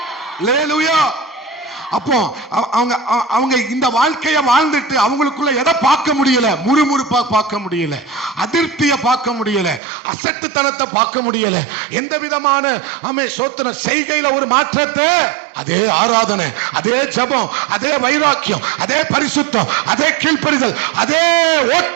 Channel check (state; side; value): drops out; left; at 9.8 s